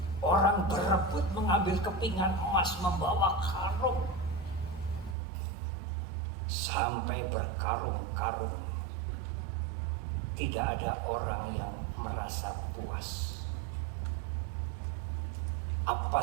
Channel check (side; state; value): left; drops out; at 5.2 s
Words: Orang berebut mengambil kepingan emas, membawa karung sampai berkarung-karung. Tidak ada orang yang merasa puas. Apa